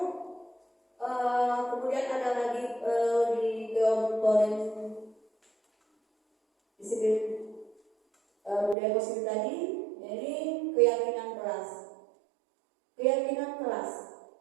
kelas. Keyakinan kelas.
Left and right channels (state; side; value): drops out; left; at 8.8 s